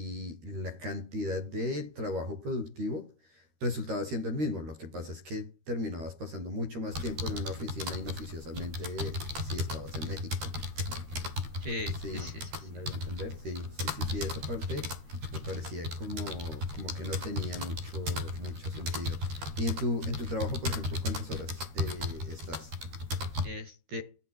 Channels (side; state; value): left; late; 13 ms